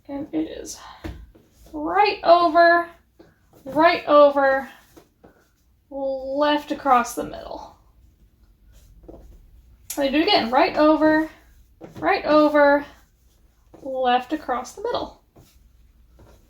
And it is right over, left across the middle. Let me do it again. Right over, left across the middle.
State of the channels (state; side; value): identical; both; correlation 1.00